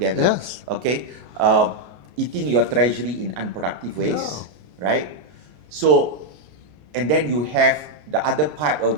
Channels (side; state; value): left; late; 33 ms